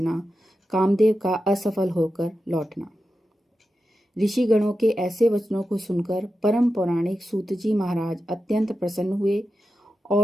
कामदेव का असफल होकर लौटना। ऋषिगणों के ऐसे वचनों को सुनकर परम पौराणिक सूत जी महाराज अत्यंत प्रसन्न हुए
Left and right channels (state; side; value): normal; both; correlation 0.91